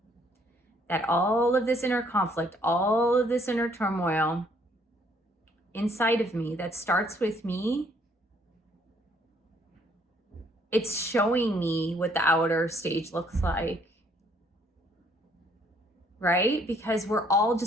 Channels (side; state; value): both; normal; correlation 0.65